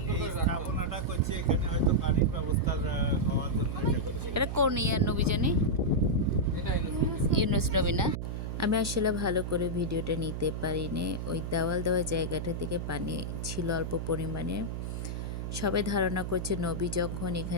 এই করে রাখতো। স্থাপনাটা করছি এখানে, হয়তো পানির ব্যবস্থা হওয়ার জন্য এটা করছি। এটা কোন ইয়ার নবী জানি? এটা ইউনুস। ইউনুস নবী না? আমি আসলে ভালো করে ভিডিওটা নিতে পারিনি। ওই দেওয়াল দেওয়া জায়গাটা থেকে পানি ছিল অল্প পরিমাণে। সবাই ধারণা করছে নবী যখন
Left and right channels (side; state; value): right; noise; hum, 4 dB below the sound